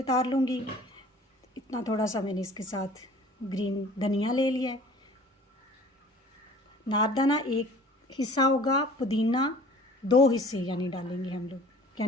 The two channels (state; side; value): normal; both; correlation 0.48